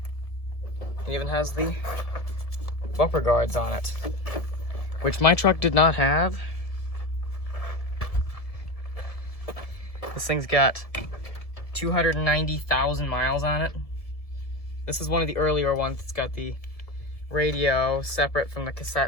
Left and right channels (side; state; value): right; late; 1.7 ms